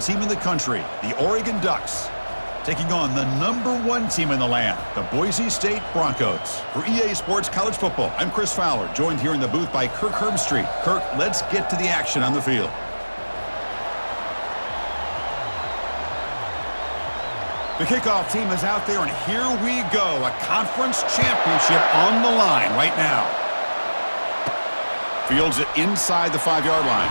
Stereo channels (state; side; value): inverted; both; correlation -1.00